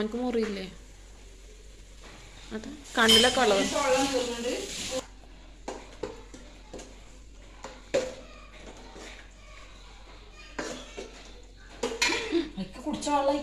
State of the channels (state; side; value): identical; both; correlation 1.00